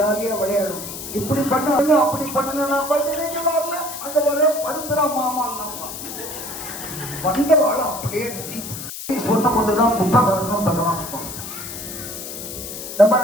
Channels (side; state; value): left; noise; hiss, 9 dB below the sound